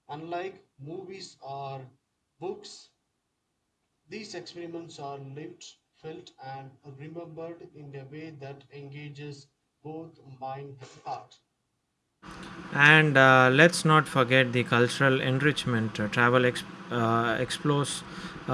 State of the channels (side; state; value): both; identical; correlation 1.00